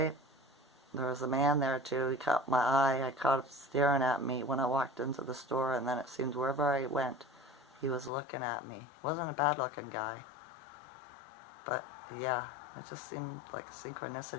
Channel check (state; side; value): drops out; right; at 8.1 s